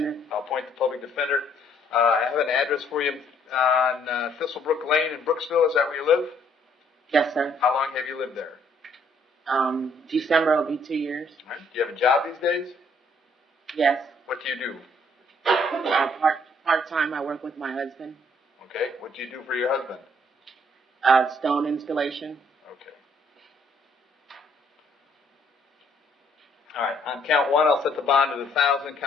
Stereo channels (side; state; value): both; normal; correlation 0.65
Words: I'll appoint the public defender. I have an address for you on Thistlebrook Lane in Brooksville. Is that where you live? Yes, sir. How long have you lived there? December will be 2 years. All right. Do you have a job these days? Yes. What do you do? Part-time, I work with my husband. Okay. What do you do for your husband? Stone installation. Okay. All right. On count 1, I'll set the bond at $1,000.